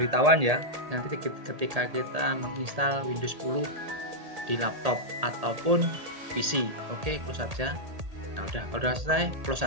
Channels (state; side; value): late; left; 1.8 ms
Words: ya, nanti ketika kita menginstal Windows 10 di laptop ataupun PC. Oke, close saja. Nah udah, kalau sudah selesai close